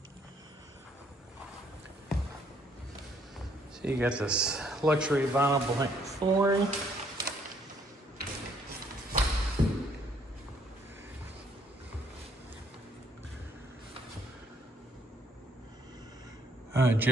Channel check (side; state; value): both; normal; correlation 0.67